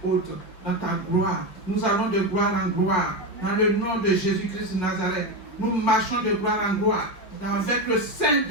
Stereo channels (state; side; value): late; right; 5.2 ms